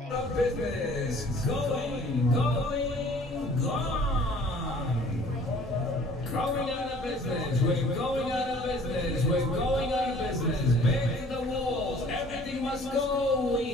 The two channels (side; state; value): both; normal; correlation 0.52